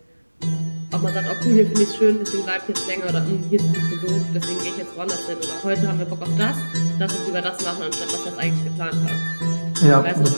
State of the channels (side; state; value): both; inverted; correlation -1.00